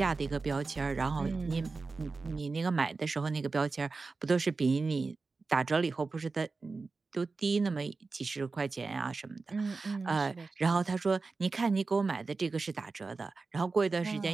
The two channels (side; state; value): left; quieter; 4.1 dB